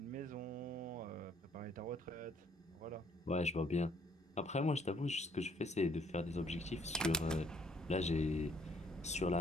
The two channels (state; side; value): normal; both; correlation 0.64